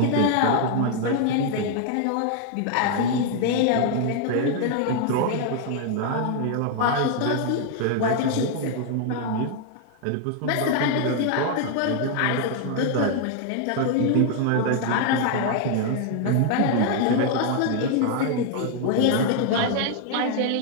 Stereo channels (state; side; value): different; both; correlation 0.00